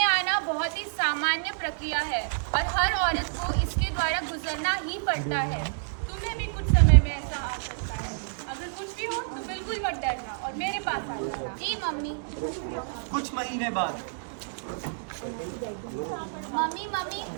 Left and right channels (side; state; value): left; silent; 59 dB below the other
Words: आना बहुत ही सामान्य प्रक्रिया है और हर औरत को इसके द्वारा गुजरना ही पड़ता है। तुम्हें भी कुछ समय में ऐसा आ सकता है। अगर कुछ भी हो तो बिल्कुल मत डरना और मेरे पास आ जाना। जी मम्मी। कुछ महीने बाद। मम्मी मम्मी,